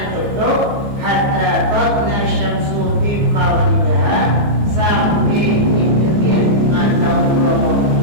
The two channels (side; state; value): left; late; 14 ms